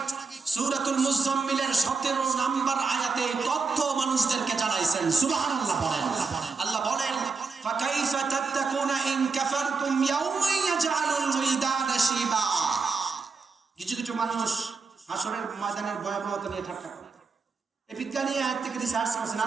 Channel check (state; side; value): quieter; left; 4.6 dB